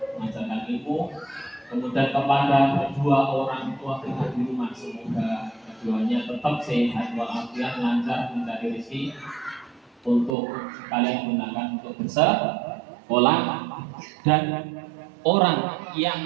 ilmu. Kemudian kepada kedua orang tua kita di rumah, semoga keduanya tetap sehat walafiat, lancar mencari rezeki untuk kalian gunakan untuk bersekolah, dan orang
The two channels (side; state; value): left; drops out; at 10.4 s